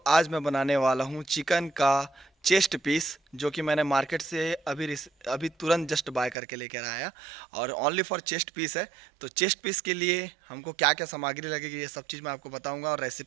आज मैं बनाने वाला हूँ चिकन का चेस्ट पीस, जो कि मैंने मार्केट से अभी तुरंत जस्ट बाय करके लेकर आया और ओनली फॉर चेस्ट पीस है। तो चेस्ट पीस के लिए हमको क्या क्या सामग्री लगेगी ये सब चीज़ मैं आपको बताऊंगा और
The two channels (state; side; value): drops out; left; at 6.4 s